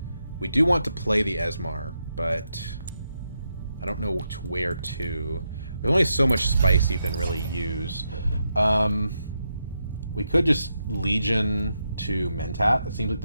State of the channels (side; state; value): both; inverted; correlation -0.84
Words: We do want to play the Esmar, but I don't know where to. There's only so much spice you can really use. We could just Legion to Mentat. That seems like